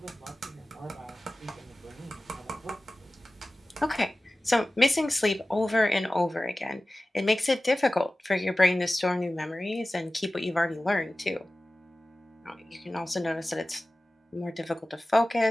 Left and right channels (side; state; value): both; normal; correlation 0.96